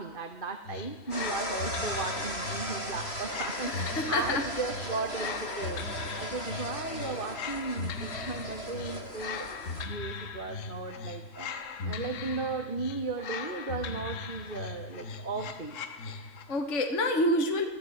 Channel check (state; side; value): late; right; 3.0 ms